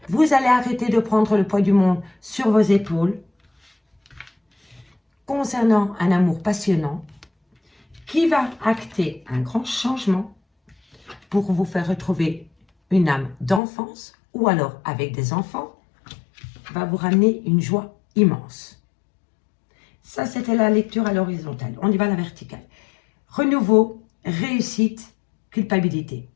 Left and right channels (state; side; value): drops out; right; at 13.6 s